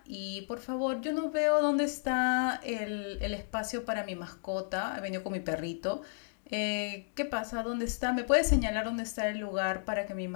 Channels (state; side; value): silent; right; digital silence